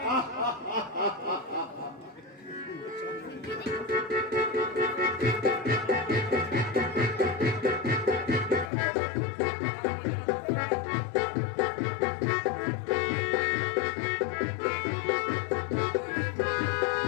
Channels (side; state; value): right; drops out; at 8.7 s